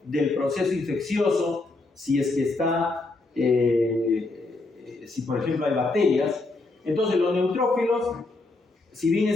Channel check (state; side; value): quieter; right; 3.3 dB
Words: del proceso infeccioso si es que está, si por ejemplo hay bacterias, Entonces los neutrófilos, si bien